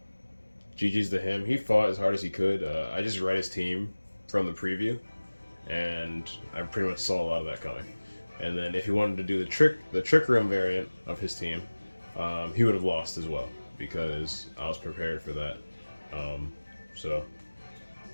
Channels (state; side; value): inverted; both; correlation -1.00